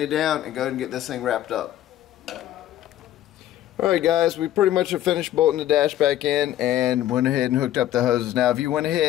it down, and go ahead and get this thing wrapped up. Alright guys, we pretty much have finished bolting the dash back in and went ahead and hooked up the hoses. Now if you went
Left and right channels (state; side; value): quieter; right; 12.8 dB